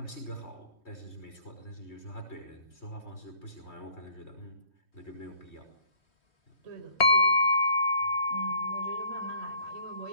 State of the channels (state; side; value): late; right; 3.5 ms